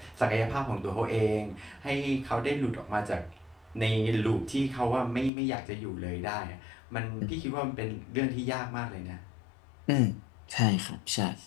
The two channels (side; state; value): right; drops out; at 5.3 s